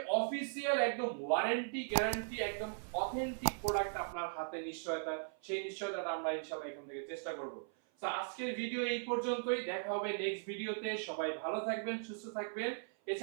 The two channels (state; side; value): silent; left; 52 dB below the other